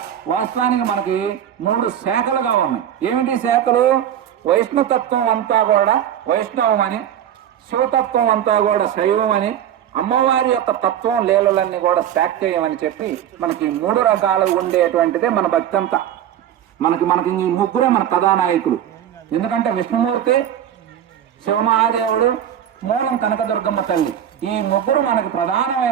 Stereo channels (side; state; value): left; quieter; 10.3 dB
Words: వాస్తవానికి మనకి 3 శాఖలుగా ఉన్నాయి. ఏమిటి శాఖలు? వైష్ణుతత్వం అంతా కూడా వైష్ణవం అని, శివతత్వం అంతా కూడా శైవం అని, అమ్మవారి యొక్క తత్వం లీలలన్నీ కూడా శాక్తేయమని చెప్పి మనకి 3 రకాలు ఉండేటువంటిదే మన భక్తి అంతా. మనకి ఈ ముగ్గురే మన కథానాయకులు. ఎందుకంటే విష్ణుమూర్తి, శివమహాదేవుడు, మూలం కనకదుర్గమ్మ తల్లి, ఈ ముగ్గురు మనకి